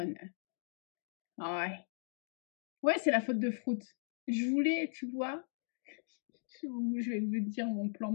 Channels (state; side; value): silent; right; digital silence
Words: Ah ouais. Ouais, c'est la faute de Fruit. Je voulais, tu vois, je vais vous dire mon plan